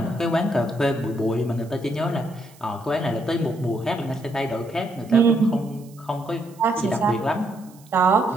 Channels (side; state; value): right; noise; hiss, 26 dB below the sound